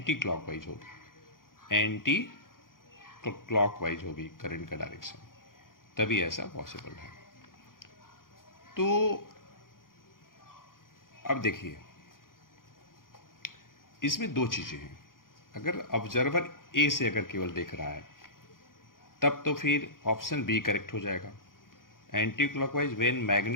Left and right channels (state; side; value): late; right; 0.90 ms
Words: क्लॉकवाइज होगी, एंटी क्लॉकवाइज होगी करंट का डायरेक्शन, तभी ऐसा पॉसिबल है। तो अब देखिए, इसमें दो चीज़ें हैं। अगर ऑब्जर्वर ए से अगर केवल देख रहा है तब तो फिर ऑप्शन बी करेक्ट हो जाएगा, anti clockwise when